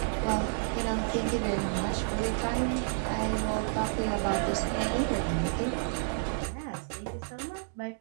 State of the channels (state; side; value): silent; left; digital silence